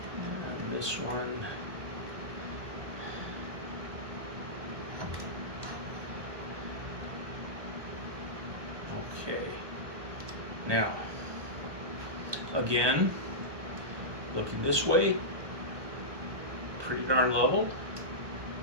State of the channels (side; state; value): left; late; 1.2 ms